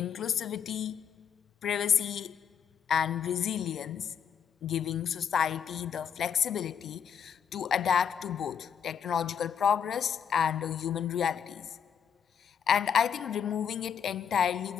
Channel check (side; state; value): right; quieter; 7.9 dB